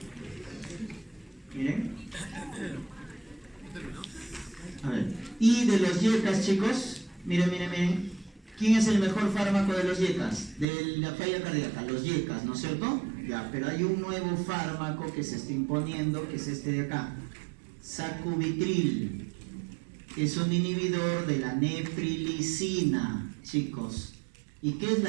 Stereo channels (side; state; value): left; drops out; at 10.7 s